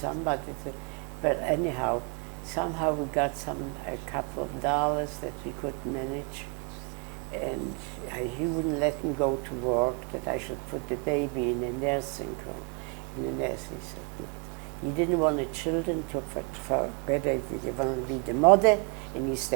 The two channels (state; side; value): quieter; left; 35.5 dB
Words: but anyhow, somehow we got a couple of dollars that we could manage. And he wouldn't let me go to work, that I should put the baby in a nursing home. In the nurse, he said no. He didn't want the children to, for whether you want to be the mother and you